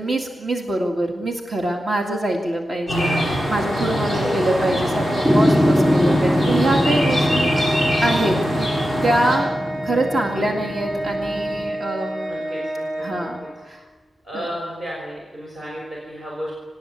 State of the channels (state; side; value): normal; both; correlation 0.91